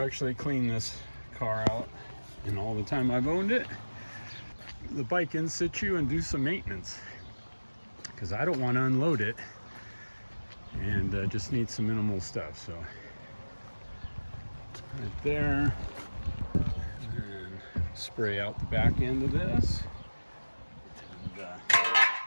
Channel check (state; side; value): inverted; both; correlation -1.00